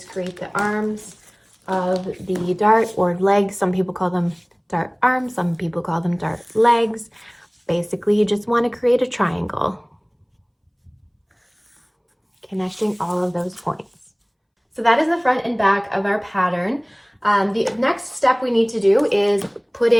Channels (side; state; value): both; identical; correlation 1.00